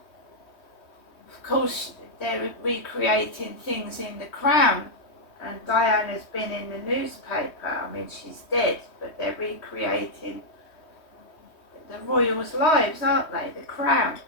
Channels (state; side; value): late; right; 3.2 ms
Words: Of course, they're recreating things in The Crown, and Diana's been in the newspaper. I mean, she's dead, but they're recreating the royals' lives, aren't they? The Crown